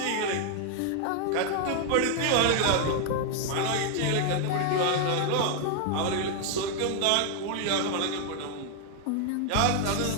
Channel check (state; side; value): different; both; correlation 0.00